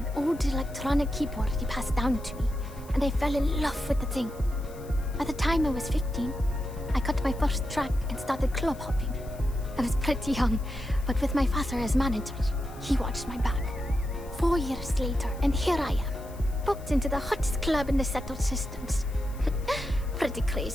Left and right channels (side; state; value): left; noise; hiss, 23 dB below the sound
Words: old electronic keyboard he passed down to me, and I fell in love with the thing. By the time I was 15, I got my first track and started club hopping. I was pretty young, but with my father as manager, he watched my back. 4 years later, and here I am, booked into the hottest club in the settled systems. Pretty